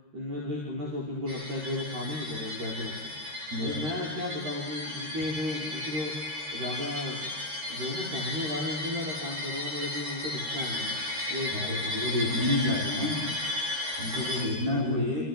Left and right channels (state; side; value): late; left; 13 ms